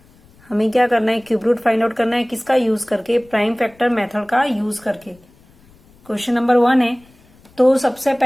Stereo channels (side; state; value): left; noise; rumble, 29 dB below the sound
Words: हमें क्या करना है, क्यूब रूट फाइंड आउट करना है। किसका यूज करके? प्राइम फैक्टर मेथड का यूज करके। क्वेश्चन नंबर 1 है, तो सबसे